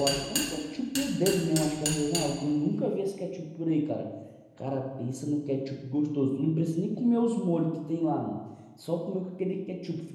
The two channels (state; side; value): identical; both; correlation 1.00